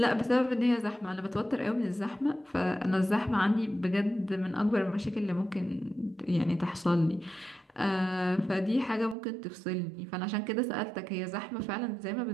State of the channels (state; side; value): drops out; left; at 9.2 s